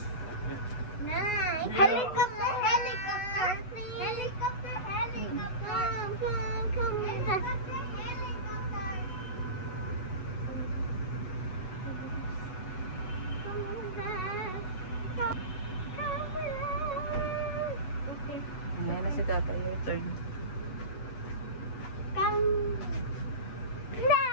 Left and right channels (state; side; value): late; right; 8.1 ms